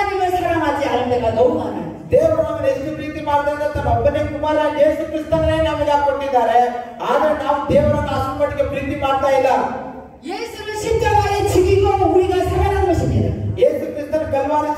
사랑하지 않을 때가 너무 많아요. ದೇವರು ನಮ್ಮನ್ನು ಎಷ್ಟು ಪ್ರೀತಿ ಮಾಡಿದ್ರೆ ತನ್ನ ಒಬ್ಬನೇ ಕುಮಾರ ಯೇಸು ಕ್ರಿಸ್ತನೇ ನಮಗೆ ಕೊಟ್ಟಿದ್ದಾರೆ. ಆದ್ರೆ ನಾವು ದೇವರನ್ನು ಅಷ್ಟು ಮಟ್ಟಿಗೆ ಪ್ರೀತಿ ಮಾಡ್ತಾ ಇಲ್ಲ. 예수를 십자가에 죽이고 우리가 살아난 것입니다. ಯೇಸು ಕ್ರಿಸ್ತನ ಕಲ್ವಾರಿ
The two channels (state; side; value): identical; both; correlation 1.00